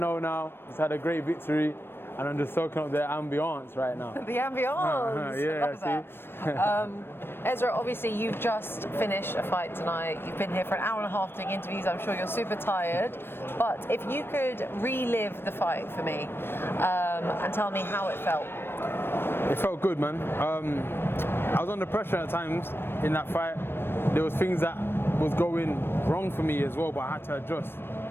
now. Just had a great victory, and I'm just soaking up the ambiance right now. The ambiance. Yeah, see. Ezra, obviously you've just finished a fight tonight. You've been here for an hour and a half doing interviews. I'm sure you're super tired. But if you could relive the fight for me and tell me how it felt. It felt good, man. I was under pressure at times in that fight. There was things that was going wrong for me as well, but I had to adjust.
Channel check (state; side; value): late; right; 0.11 ms